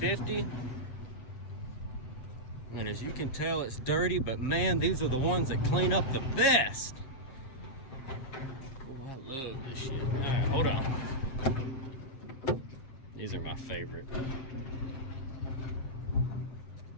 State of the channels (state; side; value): late; right; 7.5 ms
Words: And as you can tell, it's dirty, but man, these are the ones that clean up the best. Oh, I love this shit. All right, hold on. These are my favorite.